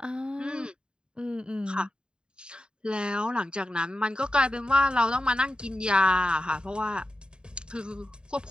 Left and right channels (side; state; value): left; late; 0.049 ms